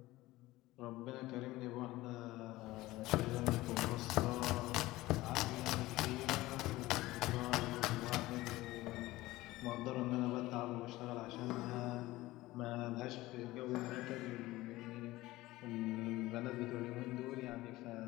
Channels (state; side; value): quieter; right; 18.1 dB